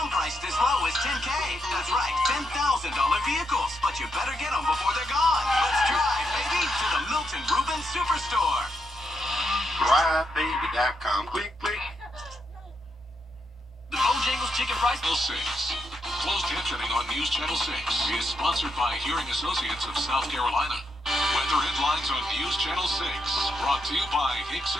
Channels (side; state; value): both; normal; correlation 0.81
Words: priced as low as $10K. That's right, $10,000 vehicles. But you better get them before they're gone. Let's drive, baby, to the Milton Rubin Superstore. DriveBaby.com. Click, click. The Bojangles Chicken Rice Bowl 6. Closed captioning on News Channel 6 is sponsored by Hearing Associates of South Carolina. Weather headlines on News Channel 6. Brought to you by